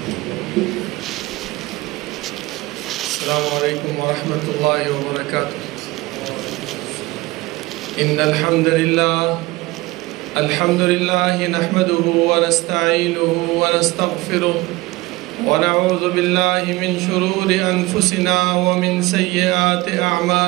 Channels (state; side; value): quieter; left; 20.5 dB